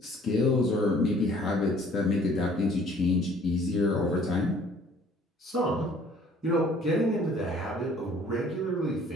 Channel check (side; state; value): both; normal; correlation 0.56